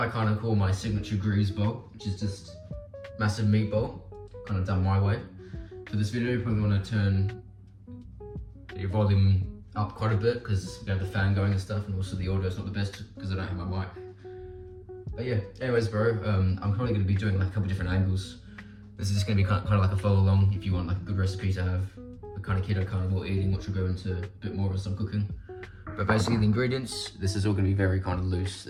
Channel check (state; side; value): identical; both; correlation 1.00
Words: kind of call my signature Greaves bowl, which is just massive meatball, kind of done my way. For this video, you probably want to turn your volume up quite a bit because we have the fan going and stuff, and also the audio is not the best because I don't have my mic. But yeah, anyways bro, I'm probably gonna be doing like a couple different angles. This is just gonna be kind of like a follow along if you want like a good recipe to have. Kind of keto carnivore eating, which will go into a bit more of some cooking. But basically the ingredients, this is all going to be very kind of loose.